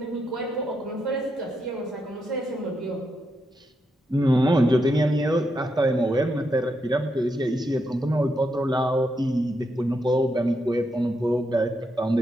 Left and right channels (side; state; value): both; normal; correlation 0.82